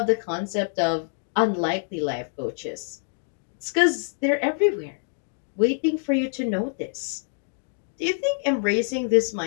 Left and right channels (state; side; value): silent; right; 61 dB below the other